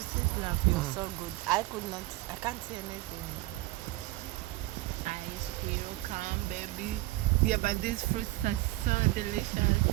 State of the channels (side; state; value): left; quieter; 19.2 dB